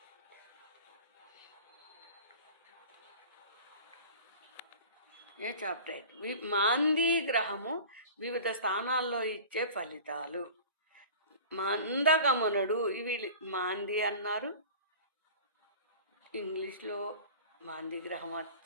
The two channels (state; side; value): inverted; both; correlation -0.40